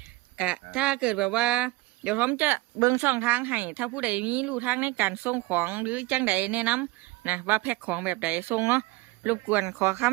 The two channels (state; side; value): quieter; left; 21.1 dB